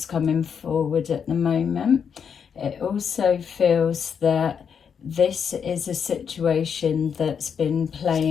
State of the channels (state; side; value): quieter; right; 7.1 dB